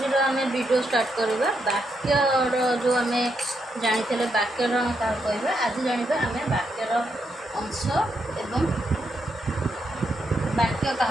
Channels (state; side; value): normal; both; correlation 0.81